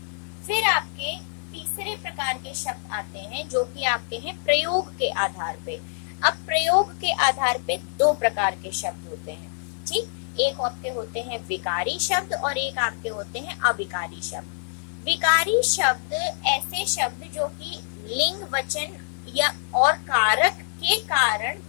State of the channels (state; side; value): silent; right; digital silence